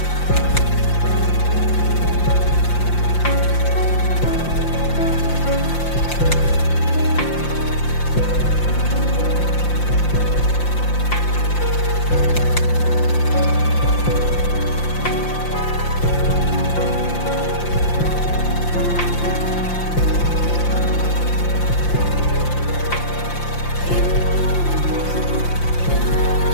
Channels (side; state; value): right; late; 5.8 ms